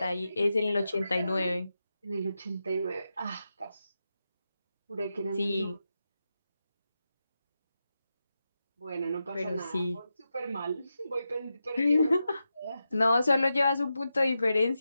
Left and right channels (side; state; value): both; inverted; correlation -0.89